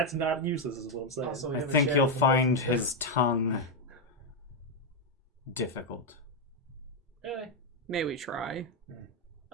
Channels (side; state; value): both; normal; correlation 0.02